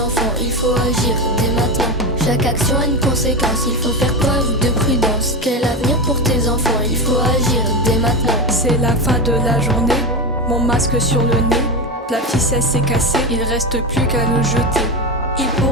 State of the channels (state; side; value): normal; both; correlation 0.17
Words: il faut agir dès maintenant. Chaque action a une conséquence, il faut faire preuve de prudence. Quel avenir pour tes enfants, il faut agir dès maintenant. C'est la fin de la journée, mon masque sur le nez. La ficelle s'est cassée, il reste plus qu'à le jeter. Il